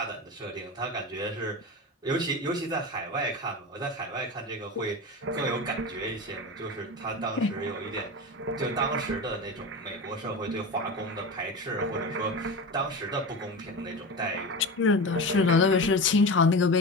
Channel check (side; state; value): both; normal; correlation 0.26